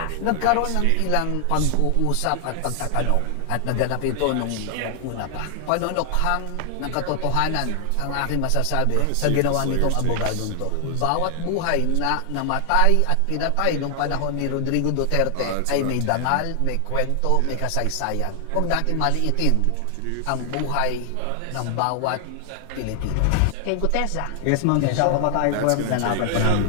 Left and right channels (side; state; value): both; different; correlation 0.00